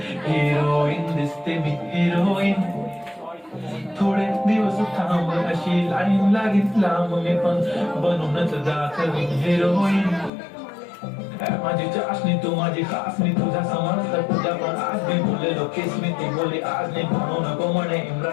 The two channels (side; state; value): right; drops out; at 10.3 s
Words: हिरोईन दिसते मी हिरोईन थोडे दिवस थांब अशी लाईन लागीत लांब मी पण बनूनच दाखवी हिरोईन माझी चाशनी तू माझी खासनी तुझा समजता तुझ्या पण आज मी बोललेलो केस मी ती बोली आज नाही म्हणू नको म्हणे